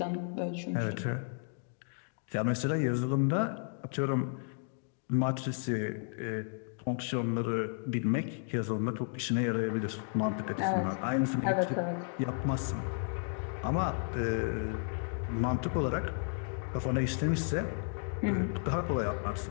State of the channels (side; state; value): right; silent; 56 dB below the other